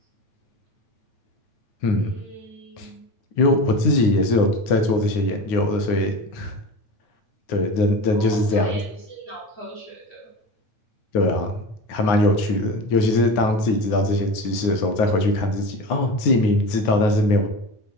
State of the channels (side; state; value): right; late; 9.5 ms